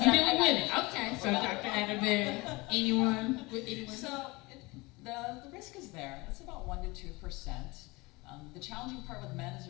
with women. Okay. So Dr. Adabin, anyone? So the risk is there. It's about 1 to 2%. The challenging part with men is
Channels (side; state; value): right; quieter; 23.8 dB